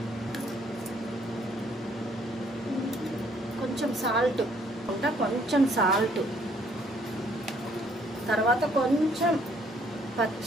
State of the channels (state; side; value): normal; both; correlation 0.64